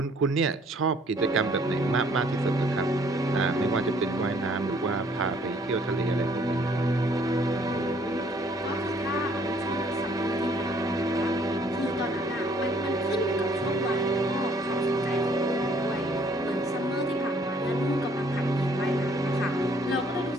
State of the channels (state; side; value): normal; both; correlation 0.62